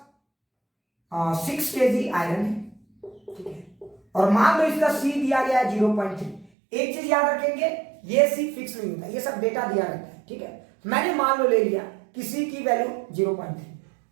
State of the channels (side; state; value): left; drops out; at 6.5 s